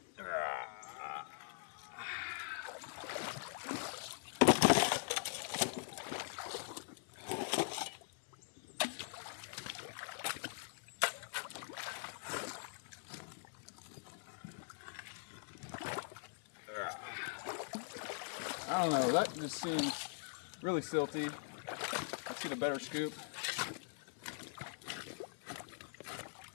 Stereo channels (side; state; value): right; silent; digital silence